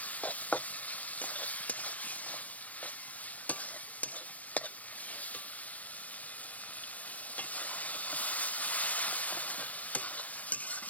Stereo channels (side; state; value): right; late; 0.069 ms